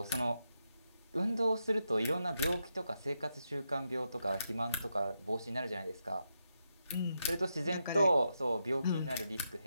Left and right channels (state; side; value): inverted; both; correlation -0.85